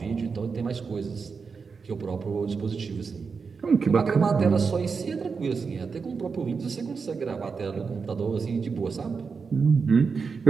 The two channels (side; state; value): left; quieter; 5.2 dB